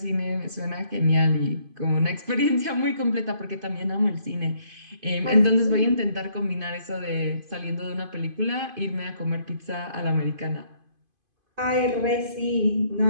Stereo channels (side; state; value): left; late; 2.5 ms